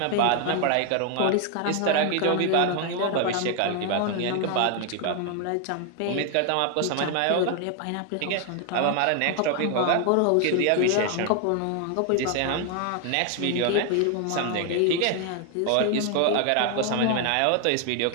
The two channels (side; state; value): both; different; correlation 0.00